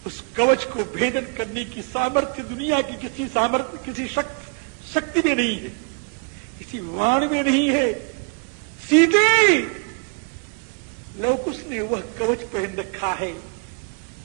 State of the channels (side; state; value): left; quieter; 35.0 dB